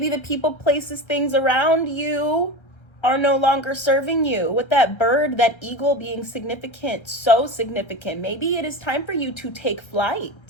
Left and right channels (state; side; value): late; right; 1.3 ms